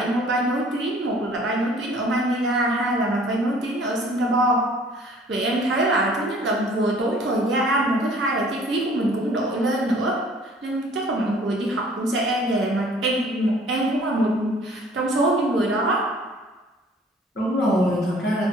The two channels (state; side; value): normal; both; correlation 0.53